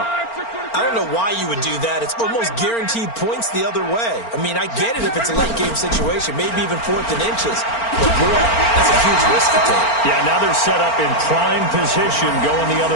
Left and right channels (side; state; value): right; late; 4.4 ms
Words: I don't know why you would do that. It's almost guaranteed points the other way. I mean, I get it if it's a late game situation, maybe even 4th and inches. But boy, that's a huge risk to take. Yeah, now they're set up in prime position going the